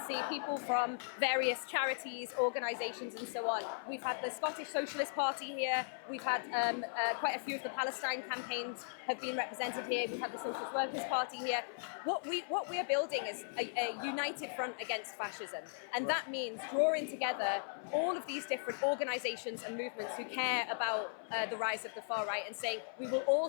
see people from various charities, organisations and so on. We've had the Scottish Socialist Party here, we've had quite a few of the Palestine campaigns have been represented here, we've had the Socialist Workers' Party here. What we are building is a united front against fascism, and that means drawing together all of these different organisations and movements who care about the rise of the far right and saying we will all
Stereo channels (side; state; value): right; silent; 53 dB below the other